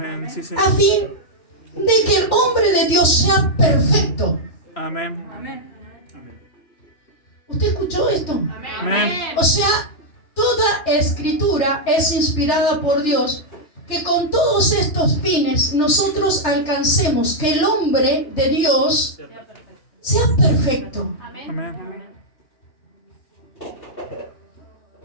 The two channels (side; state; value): right; late; 3.3 ms